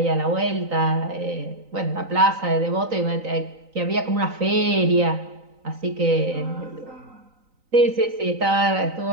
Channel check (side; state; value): left; late; 3.9 ms